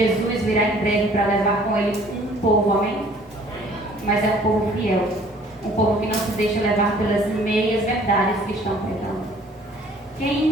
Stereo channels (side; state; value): both; normal; correlation 0.55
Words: virá em breve para levar com ele um povo, amém? Mas é um povo fiel, um povo que não se deixa levar pelas meias verdades que estão pregando.